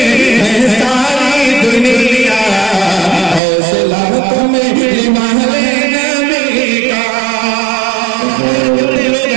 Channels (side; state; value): left; drops out; at 3.4 s